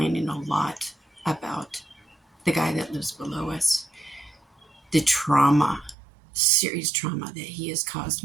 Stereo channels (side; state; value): left; drops out; at 6.0 s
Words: a lot about the guy that lives below us, the trauma, serious trauma that he has caused